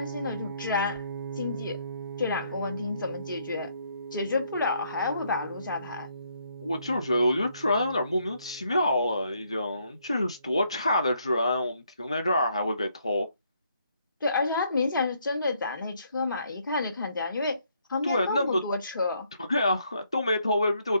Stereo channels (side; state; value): both; inverted; correlation -0.71